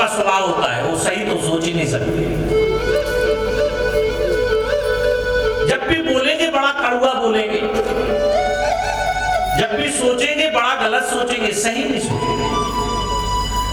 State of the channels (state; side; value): identical; both; correlation 1.00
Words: स्वभाव होता है वो सही तो सोच ही नहीं सकते। जब भी बोलेंगे बड़ा कड़वा बोलेंगे, जब भी सोचेंगे बड़ा गलत सोचेंगे, सही नहीं सोचेंगे।